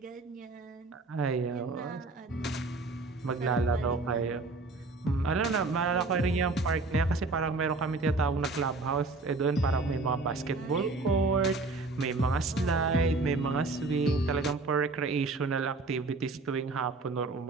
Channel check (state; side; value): quieter; left; 3.5 dB